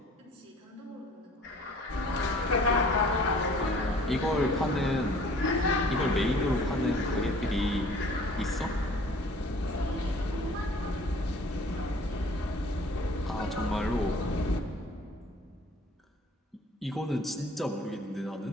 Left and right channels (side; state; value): both; normal; correlation 0.52